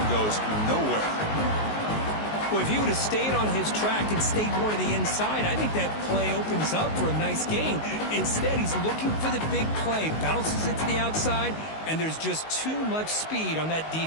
goes nowhere. Well, if he would have stayed on his track and stayed more to the inside, I think that play opens up for a nice gain. Instead, he's looking for the big play, bounces it to the outside, and there's just too much speed on that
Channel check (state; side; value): late; right; 19 ms